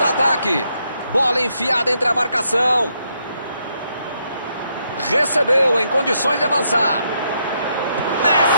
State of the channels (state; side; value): inverted; both; correlation -0.77